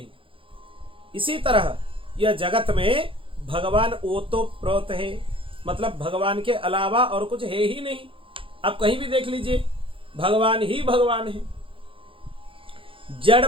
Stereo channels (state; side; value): late; left; 0.25 ms